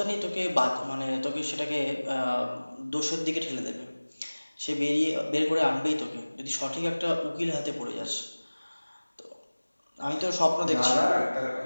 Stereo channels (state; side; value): inverted; both; correlation -1.00